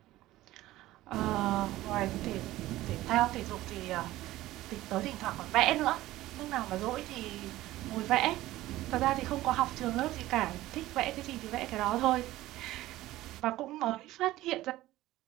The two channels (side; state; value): left; quieter; 16.3 dB